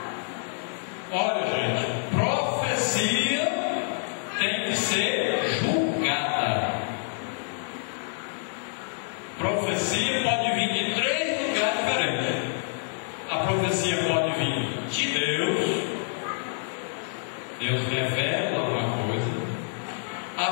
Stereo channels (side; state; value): right; silent; 59 dB below the other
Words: Olha, gente, profecia tem que ser julgada. Profecia pode vir de três lugares diferentes. A profecia pode vir de Deus. Deus revela